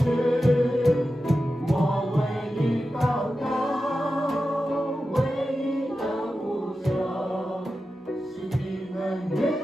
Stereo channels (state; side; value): normal; both; correlation 0.92